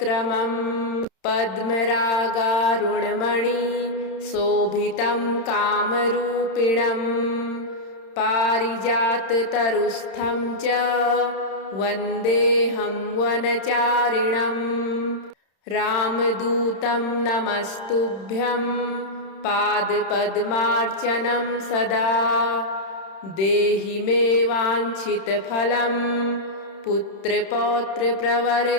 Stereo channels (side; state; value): right; late; 31 ms